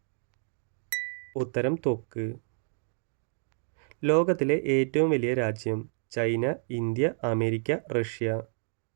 ഉത്തരം ത്വക്ക്. ലോകത്തിലെ ഏറ്റവും വലിയ രാജ്യം: ചൈന, ഇന്ത്യ, അമേരിക്ക, റഷ്യ.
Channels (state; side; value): silent; left; digital silence